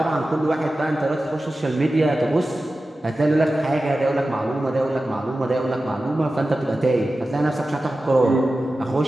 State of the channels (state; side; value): normal; both; correlation 0.94